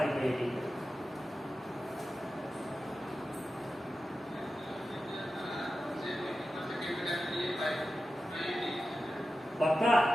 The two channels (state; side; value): normal; both; correlation 0.93